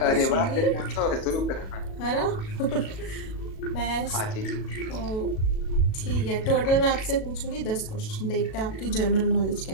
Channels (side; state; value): right; late; 37 ms